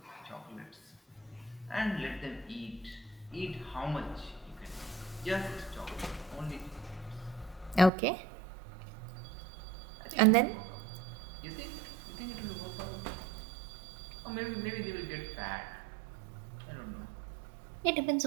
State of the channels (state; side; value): drops out; left; at 7.9 s